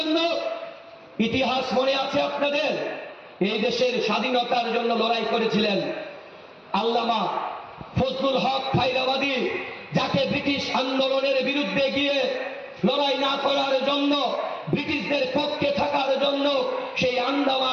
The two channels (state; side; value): identical; both; correlation 1.00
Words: ইতিহাস মনে আছে আপনাদের? এই দেশের স্বাধীনতার জন্য লড়াই করেছিলেন আল্লামা ফজলুল হক খায়রাবাদী, যাকে ব্রিটিশ আন্দোলনের বিরুদ্ধে গিয়ে লড়াই না করার জন্য, ব্রিটিশদের পক্ষে থাকার জন্য সেই